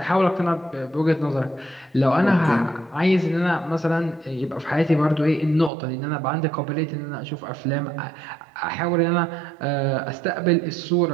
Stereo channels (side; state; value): left; drops out; at 5.7 s